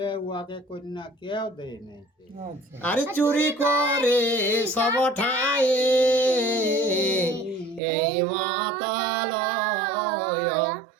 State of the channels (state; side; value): drops out; left; at 7.8 s